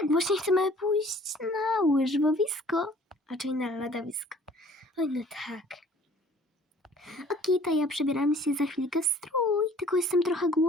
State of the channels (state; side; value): normal; both; correlation 0.53